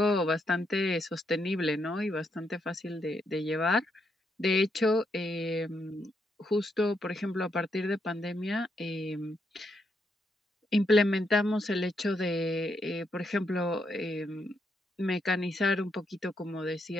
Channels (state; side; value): normal; both; correlation 0.79